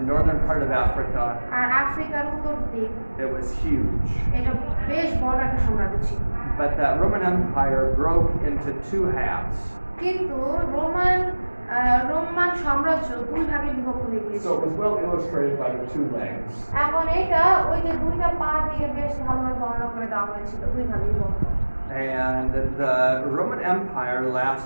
northern part of Africa. আর আফ্রিকার উত্তর দিক। It was huge. এটা বেশ বড় একটা সাম্রাজ্য ছিল। But that Roman Empire broke into two halves. কিন্তু রোমান সাম্রাজ্য দুই ভাগে বিভক্ত হয়ে গিয়েছিল। So it was well illustrated by the two legs. এখন এটা ওই যে দুইটা পা দিয়ে বেশ ভালোভাবে বর্ণনা করে দেওয়া হয়েছিল, দুই ভাগে বিভক্ত। And the Roman Empire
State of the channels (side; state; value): both; inverted; correlation -1.00